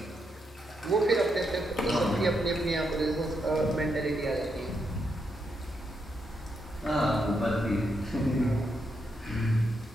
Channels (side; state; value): both; normal; correlation 0.81